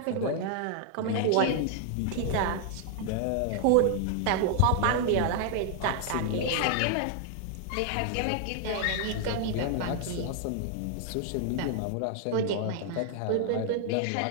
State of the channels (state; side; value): different; both; correlation 0.00